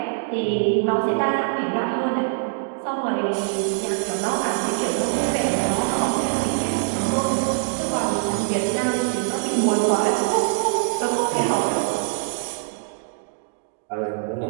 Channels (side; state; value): left; silent; digital silence